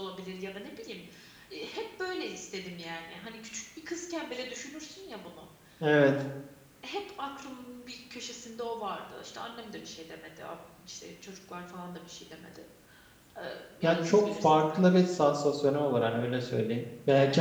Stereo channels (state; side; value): identical; both; correlation 1.00